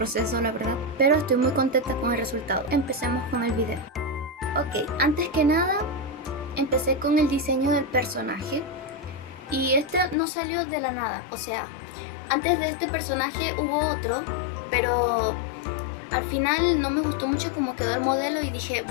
la verdad, pero estoy muy contenta con el resultado. Empecemos con el video. Ok, antes que nada empecé con el diseño del personaje y este no salió de la nada, o sea, antes de este personaje hubo otro, pero al final no me gustó mucho cómo quedó el modelo y dije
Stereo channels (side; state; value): right; drops out; at 10.2 s